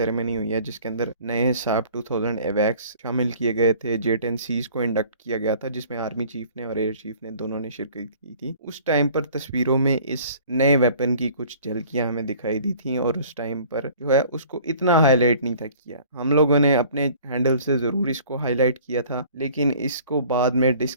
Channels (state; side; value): inverted; both; correlation -0.50